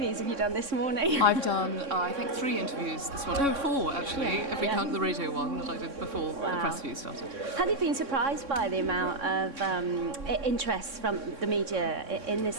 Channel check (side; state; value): left; late; 3.6 ms